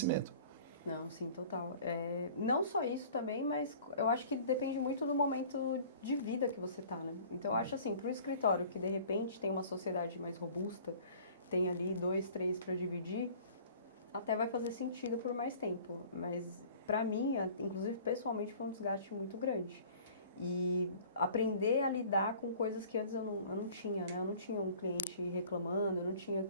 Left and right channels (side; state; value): both; inverted; correlation -0.49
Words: Não, sim, total. Não só isso também, mas eu acho que depende muito do momento de vida que você tá, né? Então, eu acho assim, para um escritório que de repente tem uma sociedade mais robusta, tem ali 2, 3 para dividir, até vai fazer sentido por mais tempo. Mas para mim, inclusive pessoalmente, foi um desgaste muito grande. E aprender a lidar com coisas que antes eu não tinha, né? Eu não tinha um cliente reclamando, eu não tinha